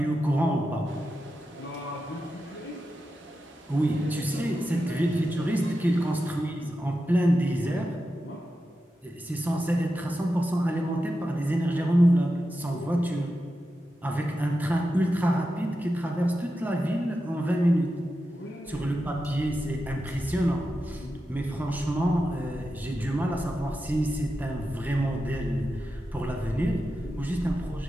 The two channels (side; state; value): both; normal; correlation 0.90